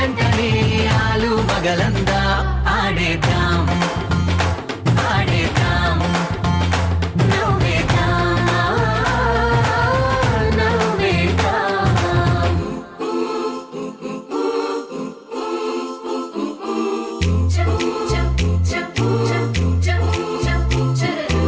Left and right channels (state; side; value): identical; both; correlation 1.00